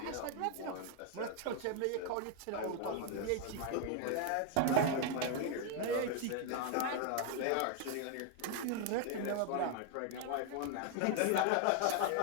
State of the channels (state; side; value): different; both; correlation 0.00